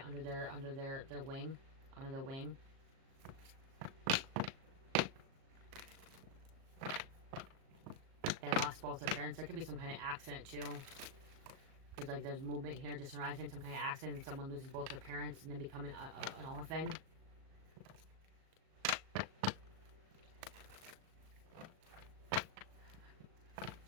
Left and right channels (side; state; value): left; late; 37 ms